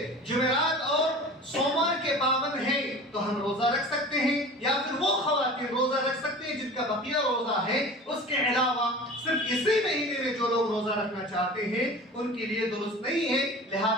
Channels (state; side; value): normal; both; correlation 0.38